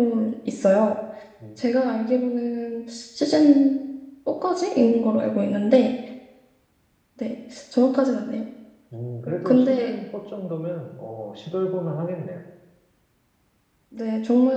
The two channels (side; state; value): both; identical; correlation 1.00